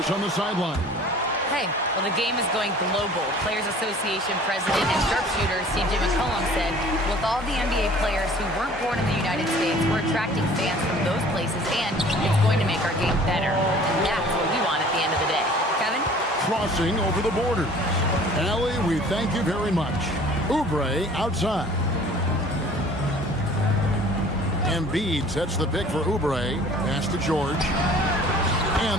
on the sideline. Hey, well, the game is going global. Players Association President and sharpshooter C.J. McCollum said, with all the NBA players who weren't born in the United States, we're attracting fans from those places, and it's going to make our game better. And that's what we want at the end of the day. Kevin? Crossing over the border. Allie, we thank you very much. Oubre outside. Embiid sets the pick for Oubre. Pass to George.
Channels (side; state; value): both; normal; correlation 0.49